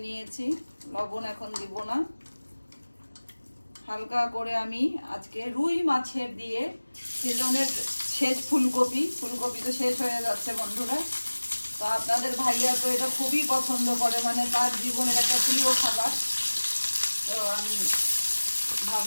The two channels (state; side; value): inverted; both; correlation -1.00